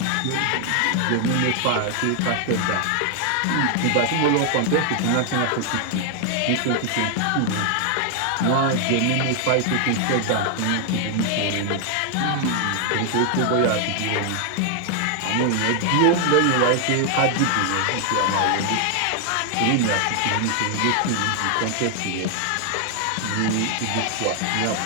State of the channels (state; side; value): different; both; correlation 0.00